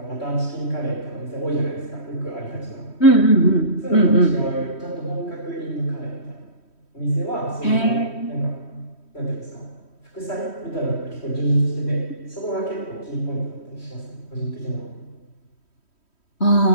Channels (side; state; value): right; late; 3.1 ms